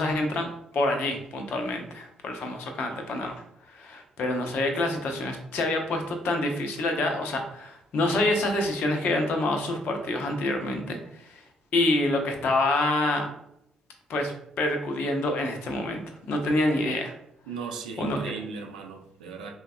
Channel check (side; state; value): both; normal; correlation 0.69